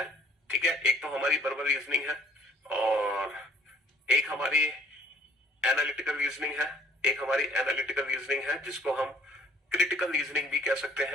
ठीक है, एक तो हमारी वर्बल रीजनिंग है और एक हमारी एनालिटिकल रीजनिंग है, एक हमारी एनालिटिकल रीजनिंग है जिसको हम क्रिटिकल रीजनिंग भी कह सकते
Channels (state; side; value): normal; both; correlation 0.59